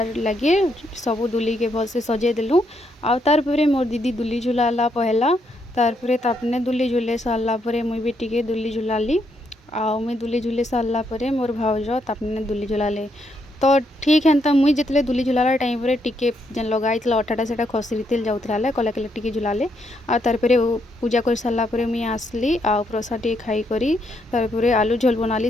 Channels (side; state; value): both; normal; correlation 0.76